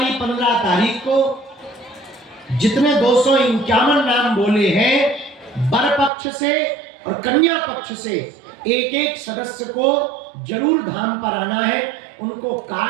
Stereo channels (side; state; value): left; drops out; at 6.1 s